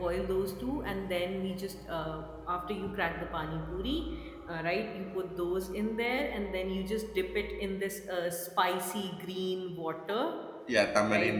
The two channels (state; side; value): identical; both; correlation 1.00